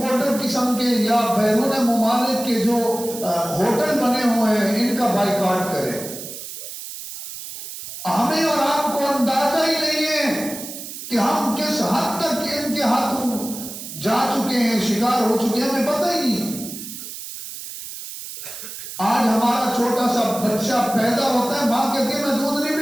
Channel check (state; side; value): noise; right; hiss, 10 dB below the sound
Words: قسم کے یا بیرون ممالک کے جو ہوٹل بنے ہوئے ہیں ان کا بائیکاٹ کریں۔ ہمیں اور آپ کو اندازہ ہی نہیں ہے کہ ہم کس حد تک ان کے ہاتھوں جا چکے ہیں، شکار ہو چکے ہیں، ہمیں پتہ ہی نہیں۔ آج ہمارا چھوٹا سا بچہ پیدا ہوتا ہے، ماں کہتی ہے میں دودھ نہیں